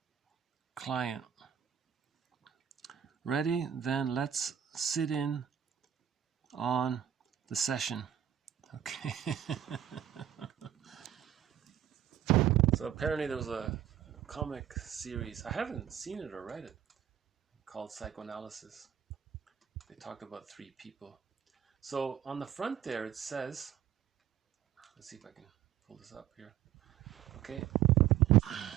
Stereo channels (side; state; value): left; quieter; 10.3 dB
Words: client. Ready? Then let's sit in on the session. Okay. So apparently there was a comic series, I haven't seen it or read it, called Psychoanalysis. They talked about 3 people. So on the front there it says, let's see if I can pull this up here. Okay.